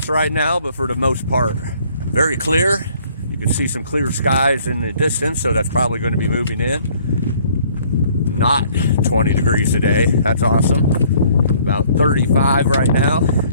right now, but for the most part, very clear. You can see some clear skies in the distance, so that's probably going to be moving in. Not 20 degrees today. That's awesome. About 35 right now.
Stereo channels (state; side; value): inverted; both; correlation -0.59